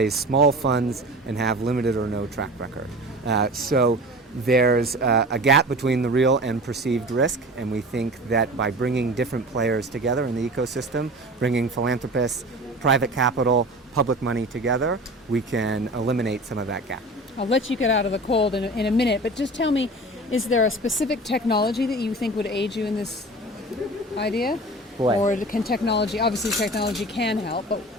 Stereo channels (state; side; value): normal; both; correlation 0.36